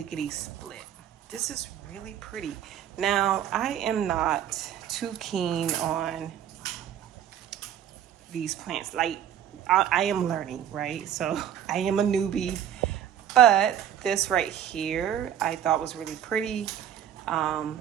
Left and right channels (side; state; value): left; quieter; 10.1 dB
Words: split. This is really pretty. Now, I am not too keen on these plants. Like, I am learning, right? So I am a newbie, but this right here, I thought was really pretty.